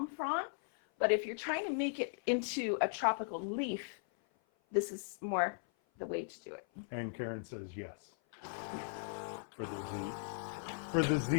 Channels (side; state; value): right; silent; 53 dB below the other